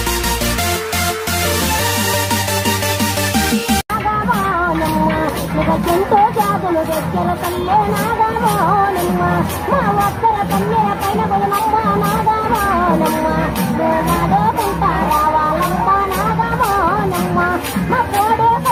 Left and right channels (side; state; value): both; identical; correlation 1.00